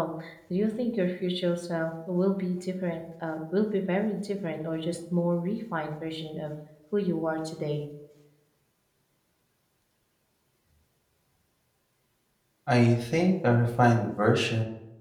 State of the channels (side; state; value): both; identical; correlation 1.00